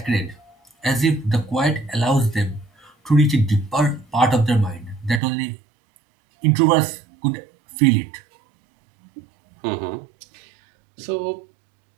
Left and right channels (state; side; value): drops out; left; at 5.2 s